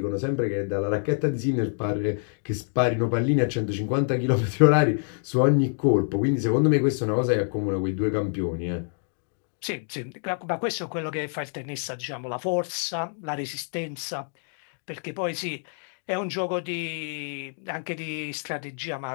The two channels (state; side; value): silent; right; 59 dB below the other